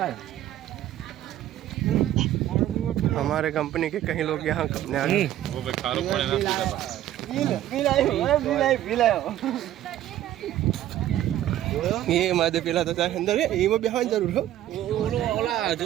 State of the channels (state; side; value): quieter; left; 12.8 dB